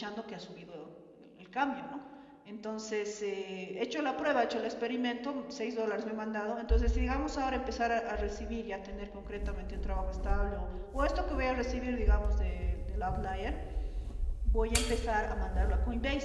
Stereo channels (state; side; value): identical; both; correlation 1.00